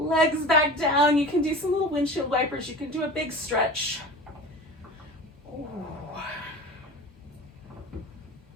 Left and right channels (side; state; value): both; normal; correlation 0.35